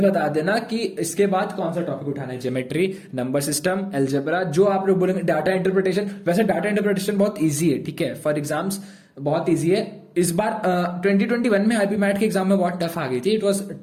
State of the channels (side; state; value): both; identical; correlation 1.00